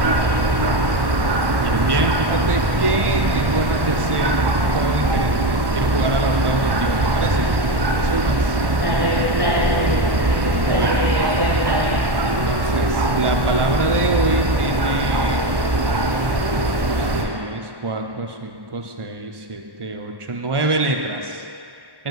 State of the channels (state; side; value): late; left; 1.1 ms